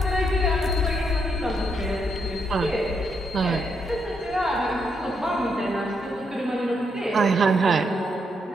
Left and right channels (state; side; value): normal; both; correlation 0.78